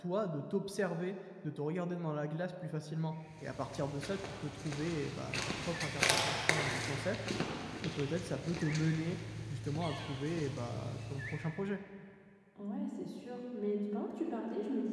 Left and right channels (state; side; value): identical; both; correlation 1.00